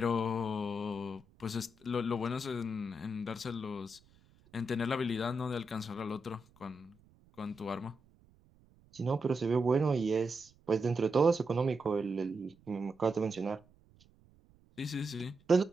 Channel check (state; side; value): noise; right; rumble, 29 dB below the sound